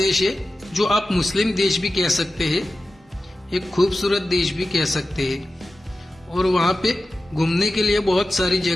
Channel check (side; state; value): both; normal; correlation 0.93